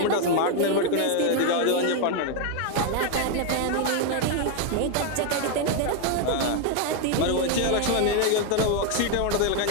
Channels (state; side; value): different; both; correlation 0.01